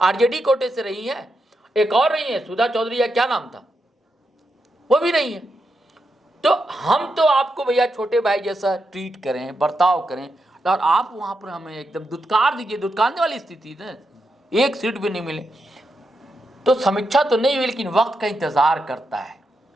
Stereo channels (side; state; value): both; normal; correlation 0.85